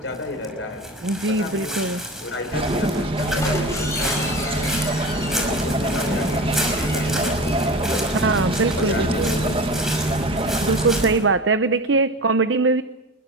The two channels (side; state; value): both; normal; correlation 0.31